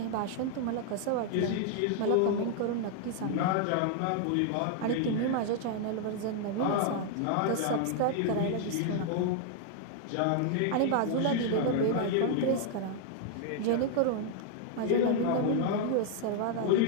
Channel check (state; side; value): different; both; correlation 0.00